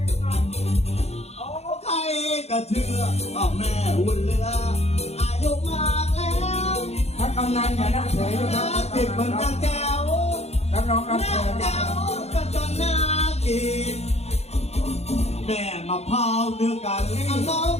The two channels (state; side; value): late; right; 0.31 ms